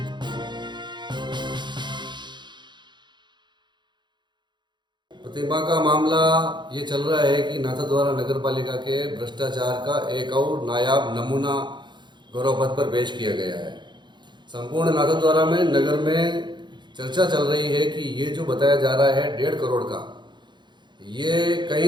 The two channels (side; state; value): left; late; 0.22 ms